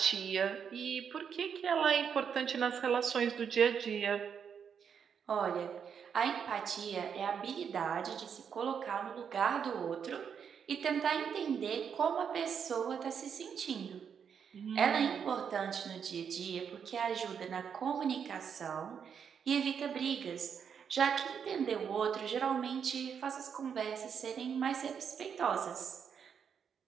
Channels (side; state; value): left; quieter; 7.3 dB